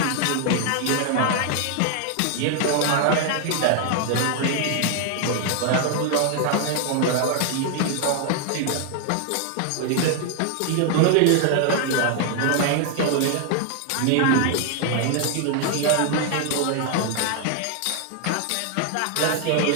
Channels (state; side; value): different; both; correlation 0.00